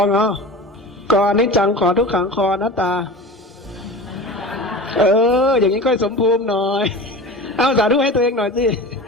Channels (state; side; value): normal; both; correlation 0.32